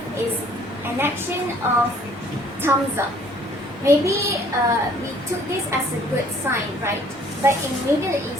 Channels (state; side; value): normal; both; correlation 0.58